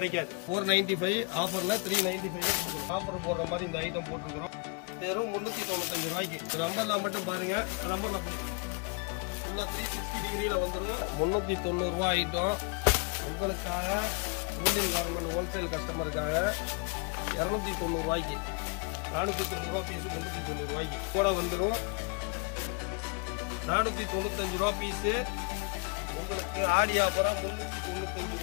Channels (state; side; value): quieter; right; 32.9 dB